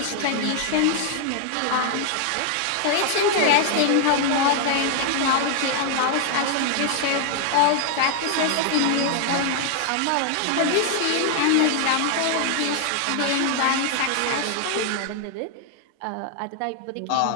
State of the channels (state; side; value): different; both; correlation 0.00